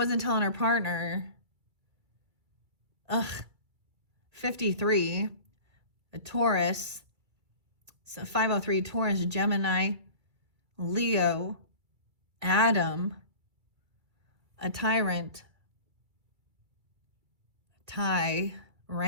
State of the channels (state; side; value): late; left; 2.3 ms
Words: telling her partner. Ugh. 53. A Taurus. So 503 Taurus, Gemini, Leo, Adam, a tyrant, Ty,